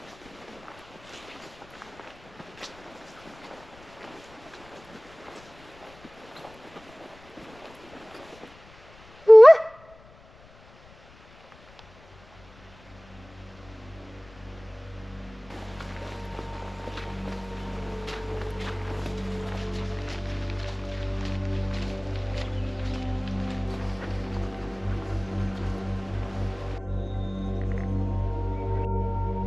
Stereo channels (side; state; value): left; noise; rumble, 23 dB below the sound